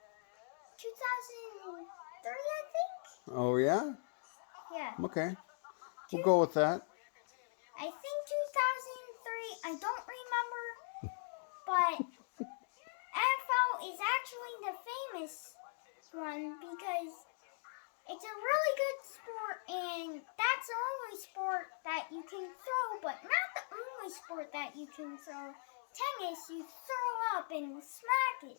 2003, I think. Oh, yeah? Yeah. Okay. We'll go with that. I think 2003. I don't remember, but NFL is actually the famous one because it's a really good sport, and that's the only sport that you can throw, but not the only sport that you can throw. tennis, you throw up and smack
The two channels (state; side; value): silent; right; digital silence